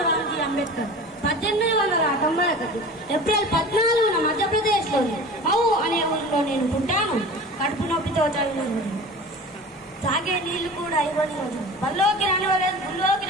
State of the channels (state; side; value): normal; both; correlation 0.37